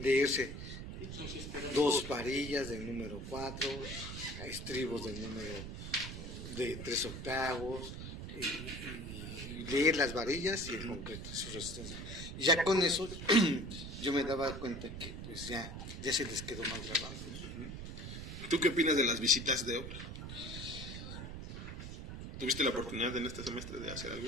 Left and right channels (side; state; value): right; noise; rumble, 8 dB below the sound